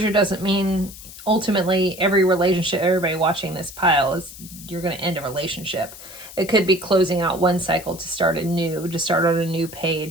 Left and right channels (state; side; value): noise; left; hiss, 16 dB below the sound